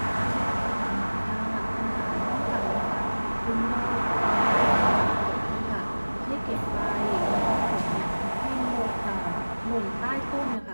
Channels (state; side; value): inverted; both; correlation -1.00